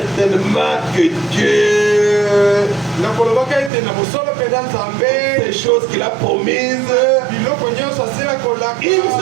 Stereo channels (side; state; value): left; drops out; at 3.7 s